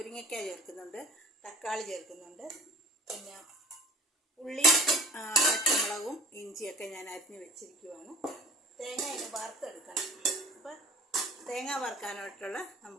ചേർക്കുന്നുണ്ട്, തക്കാളി ചേർക്കുന്നുണ്ട്, പിന്നെ ഉള്ളി, പച്ചമുളകും ഇഞ്ചിയൊക്കെ ഞാൻ അരിഞ്ഞ് വെച്ചിരിക്കുവാണ്. തേങ്ങ ഇനി വറുത്തെടുക്കണം. അപ്പോൾ തേങ്ങ വറുക്കാനായിട്ടുള്ള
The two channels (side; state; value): both; normal; correlation 0.44